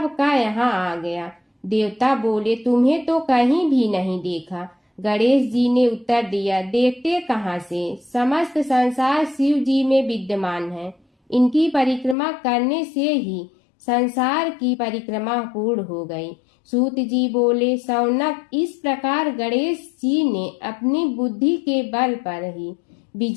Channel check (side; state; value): right; drops out; at 12.2 s